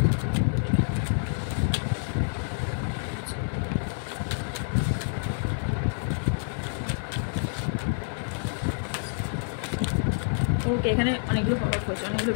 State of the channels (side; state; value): right; silent; digital silence